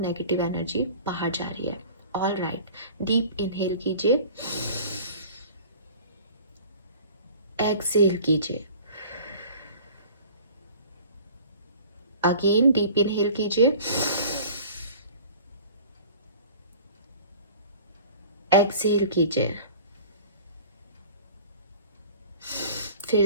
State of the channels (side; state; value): both; inverted; correlation -0.44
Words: एनर्जी बाहर जा रही है। ऑल राइट, डीप इनहेल कीजिए, एक्सेल कीजिए, अगेन डीप इनहेल कीजिए, एक्सेल कीजिए, फिर